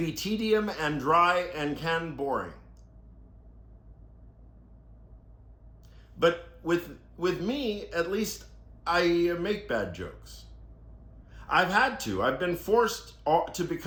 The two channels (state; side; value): identical; both; correlation 1.00